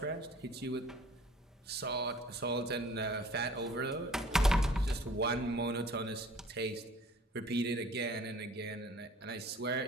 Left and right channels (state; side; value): normal; both; correlation 0.50